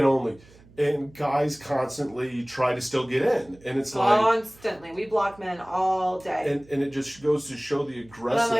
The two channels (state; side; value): noise; right; hum, 25 dB below the sound